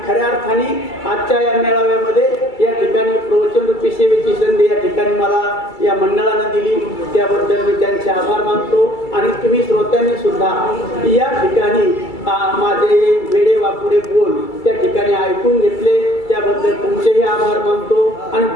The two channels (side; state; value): right; late; 2.3 ms